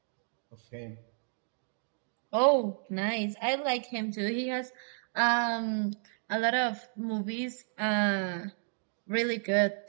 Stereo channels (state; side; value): silent; left; digital silence